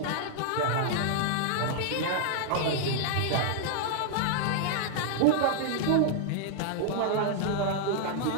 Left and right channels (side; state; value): both; different; correlation 0.00